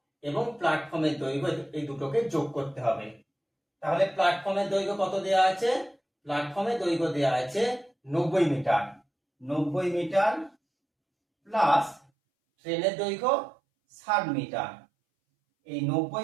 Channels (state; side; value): drops out; left; at 12.1 s